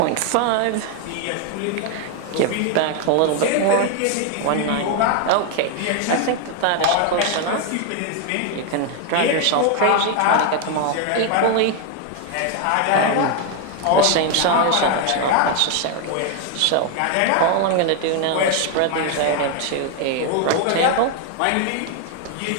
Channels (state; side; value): different; both; correlation 0.01